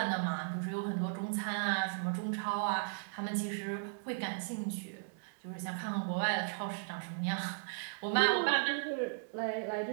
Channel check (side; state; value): left; silent; digital silence